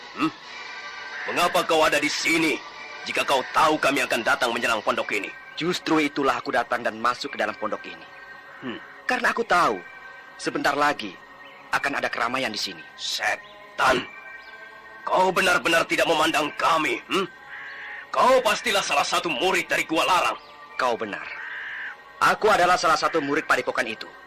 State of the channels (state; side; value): identical; both; correlation 1.00